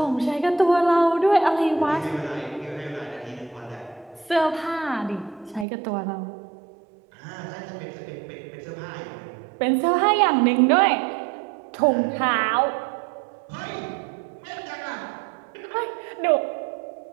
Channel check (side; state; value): left; drops out; at 5.7 s